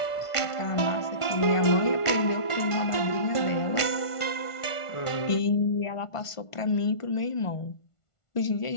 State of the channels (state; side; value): late; right; 1.5 ms